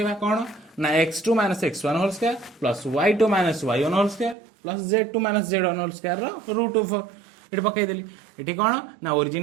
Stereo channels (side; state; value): left; drops out; at 4.4 s